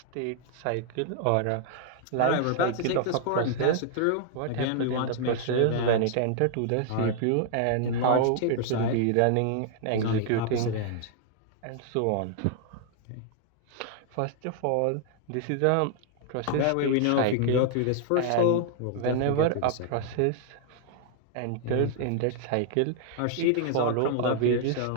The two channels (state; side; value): different; both; correlation -0.01